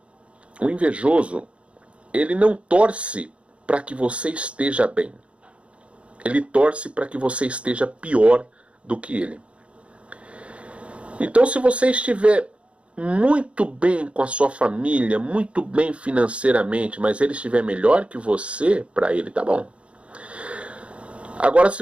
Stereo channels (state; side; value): late; left; 0.061 ms